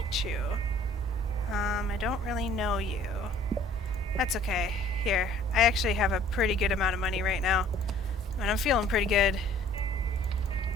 you. I don't really know you. That's okay. Here, I actually have a pretty good amount of money right now. And I'm feeling pretty good.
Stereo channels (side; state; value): both; normal; correlation 0.54